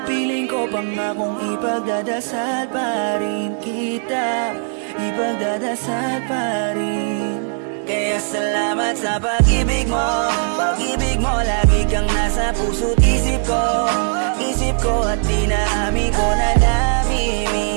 Piling ko pangakong ipagdadasal pa rin kita. Ipagdadasal pa rin. Kaya salamat sa pag-ibig mo. Pag-ibig mo lagi kang nasa puso't isip ko. Isip ko at dinaamin ko na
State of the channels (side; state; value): left; silent; digital silence